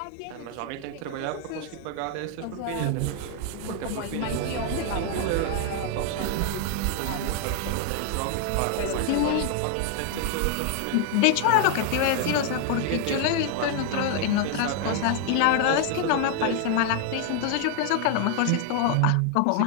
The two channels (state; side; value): different; both; correlation 0.00